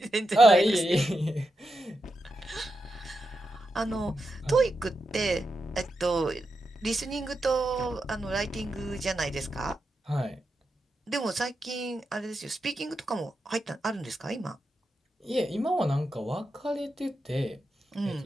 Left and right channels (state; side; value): normal; both; correlation 0.87